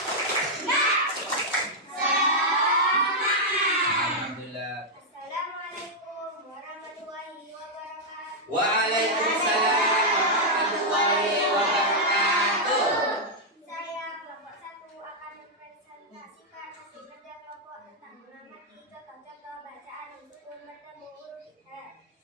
Waalaikumsalam warahmatullahi wabarakatuh. Saya kelompok 1 akan mempresentasikan hasil kerja kelompok tentang mengamati contoh-contoh bacaan sukun bertemu huruf izhar.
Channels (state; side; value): normal; both; correlation -0.03